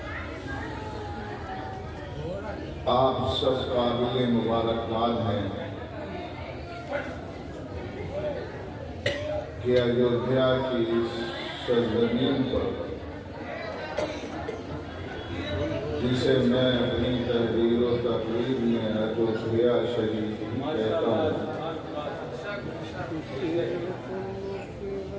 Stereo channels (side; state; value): both; identical; correlation 1.00